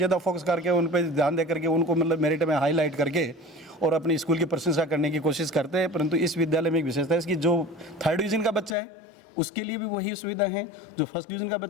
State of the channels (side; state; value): right; drops out; at 8.8 s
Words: फोकस करके उन पर ध्यान दे करके उनको मतलब मेरिट में हाईलाइट करके और अपनी स्कूल की प्रशंसा करने की कोशिश करते हैं। परंतु इस विद्यालय में एक विशेषता है इसकी, जो 3rd डिवीजन का बच्चा है उसके लिए भी वही सुविधा है। जो फर्स्ट डिवीज़न का